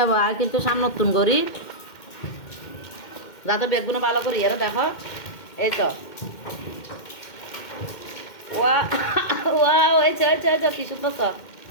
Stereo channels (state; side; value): late; right; 2.1 ms